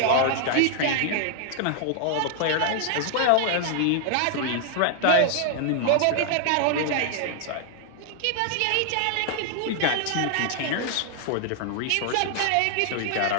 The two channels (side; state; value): both; different; correlation 0.00